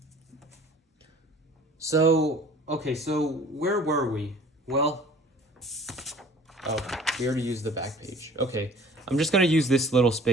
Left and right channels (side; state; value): both; normal; correlation 0.49